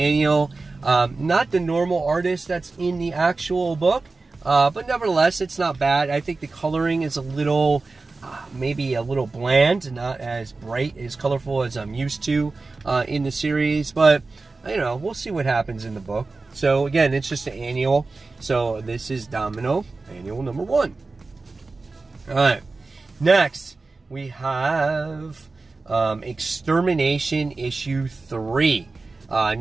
Not the normal artist that's in the actual book, but nevertheless, it's not bad. I think the coloring is a little, maybe a little bland, not as bright, as colorful as I'm used to in the series, but you know, we'll see what happens in the book. So again, it's just an annual. So this is Domino, annual number 1. All right, next we have Extermination issue 3.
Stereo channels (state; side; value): quieter; left; 3.7 dB